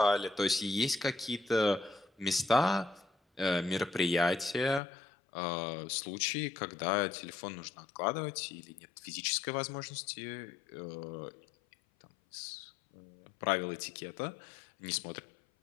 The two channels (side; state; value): right; drops out; at 4.8 s